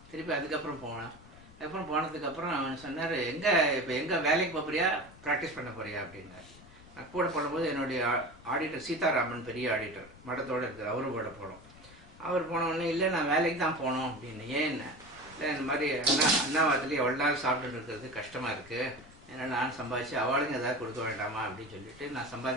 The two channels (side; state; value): left; noise; rumble, 22 dB below the sound